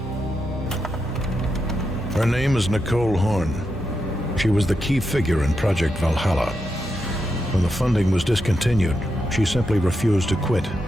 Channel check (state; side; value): normal; both; correlation 0.85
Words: Her name is Nicole Horn. She was the key figure in Project Valhalla. When the funding was discontinued, she simply refused to quit.